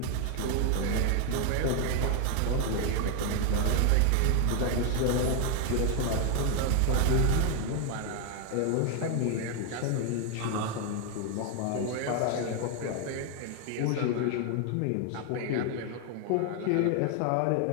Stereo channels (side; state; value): both; different; correlation 0.01